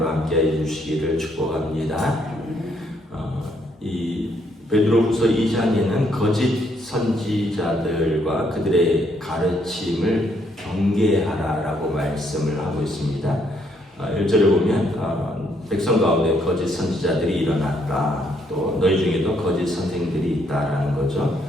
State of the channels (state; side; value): normal; both; correlation 0.71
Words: 함께 해주시기를 축복합니다. 이 베드로후서 2장에는 거짓 선지자들과 그들의 가르침을 경계하라라고 말씀을 하고 있습니다. 1절에 보면 백성 가운데 거짓 선지자들이 일어났다. 또 너희 중에도 거짓 선생들이 있다라는 거죠.